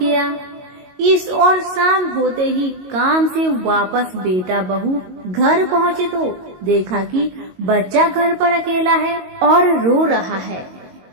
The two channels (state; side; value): late; left; 22 ms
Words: इस और शाम होते ही काम से वापस बेटा बहू घर पहुँचे तो देखा कि बच्चा घर पर अकेला है और रो रहा है।